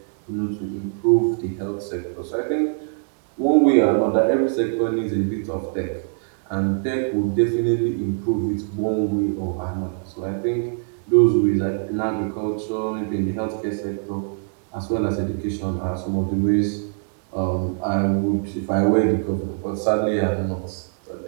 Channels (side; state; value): left; silent; 61 dB below the other